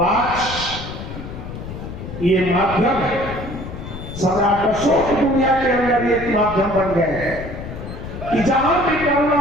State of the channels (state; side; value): noise; left; rumble, 9 dB below the sound